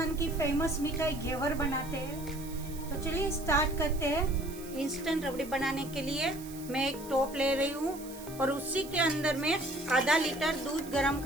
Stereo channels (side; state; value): right; noise; hiss, 16 dB below the sound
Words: की फेमस मिठाई घेवर बनाते हैं। तो चलिए स्टार्ट करते हैं। इंस्टेंट रबड़ी बनाने के लिए मैं एक टोप ले रही हूँ और उसी के अंदर में आधा लीटर दूध गर्म